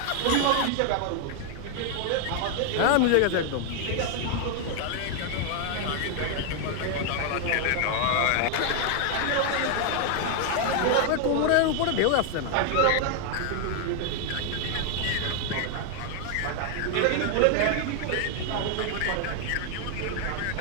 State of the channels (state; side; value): different; both; correlation 0.00